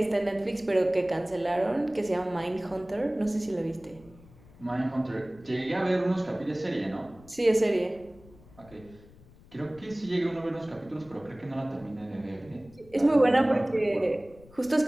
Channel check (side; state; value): left; noise; rumble, 23 dB below the sound